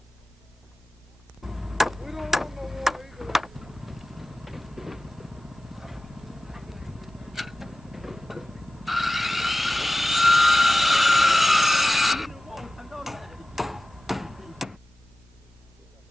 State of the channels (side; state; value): both; normal; correlation 0.96